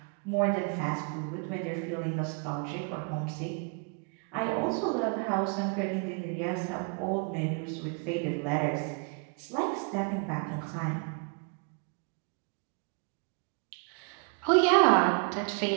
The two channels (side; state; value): left; quieter; 36.4 dB